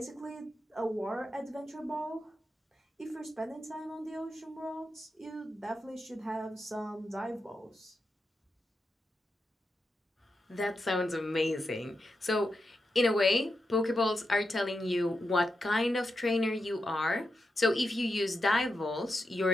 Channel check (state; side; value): normal; both; correlation 0.87